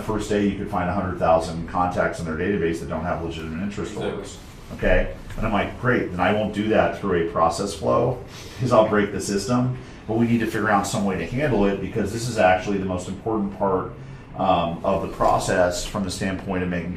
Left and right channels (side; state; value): both; identical; correlation 1.00